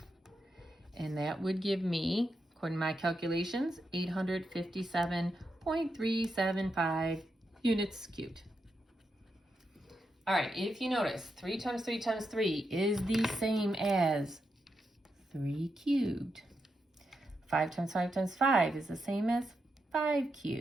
And that would give me, according to my calculations, 857.375 units cubed. All right, if you notice, 3 times 3 times 3 is the same as 3 cubed. 5 times 5 times 5 is the same as 5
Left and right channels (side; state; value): both; normal; correlation 0.85